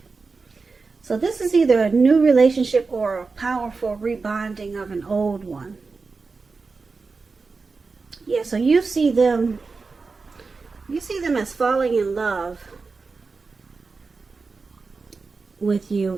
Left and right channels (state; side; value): quieter; left; 4.3 dB